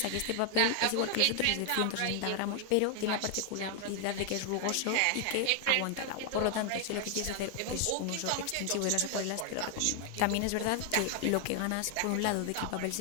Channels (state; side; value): different; both; correlation 0.00